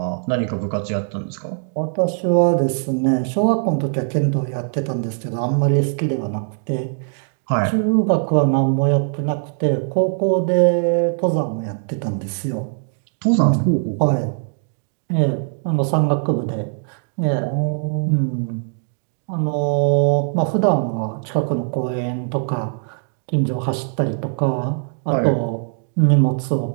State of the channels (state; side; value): silent; left; 65 dB below the other